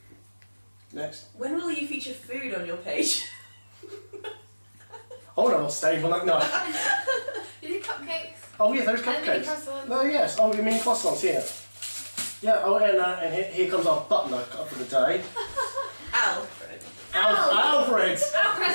Next. When will you feature food on your page? Oh no, I'll stay for like no. You did cupcakes. Oh yeah, there's And mini cupcakes. croissants. No, yes. Oh, the mini croissants here. Yeah. Oh, and here comes our butler up for the day. Alfred. Alfred.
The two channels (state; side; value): inverted; both; correlation -1.00